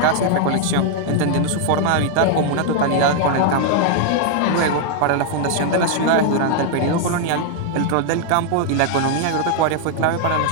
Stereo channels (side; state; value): both; different; correlation 0.00